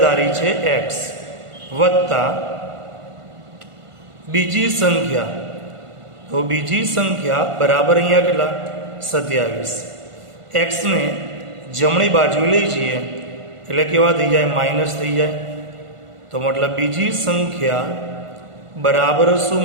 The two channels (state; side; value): late; left; 1.5 ms